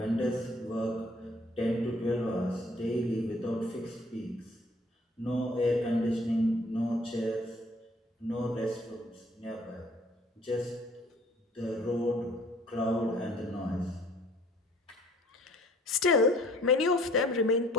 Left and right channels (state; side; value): normal; both; correlation 0.56